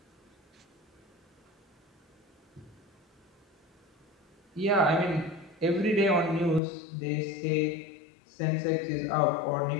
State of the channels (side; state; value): right; drops out; at 6.6 s